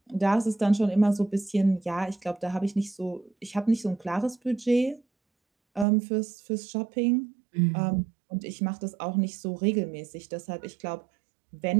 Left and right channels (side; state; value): left; drops out; at 5.9 s